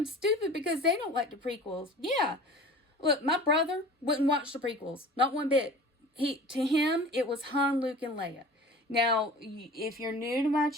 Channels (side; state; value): both; normal; correlation 0.41